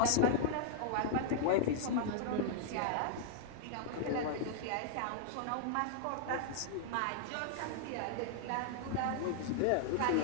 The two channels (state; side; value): different; both; correlation -0.01